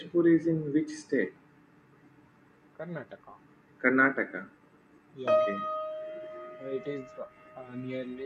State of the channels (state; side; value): identical; both; correlation 1.00